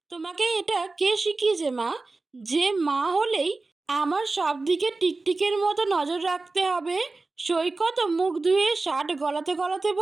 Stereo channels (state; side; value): quieter; left; 3.5 dB